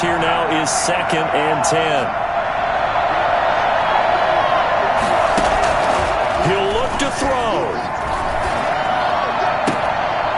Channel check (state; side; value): identical; both; correlation 1.00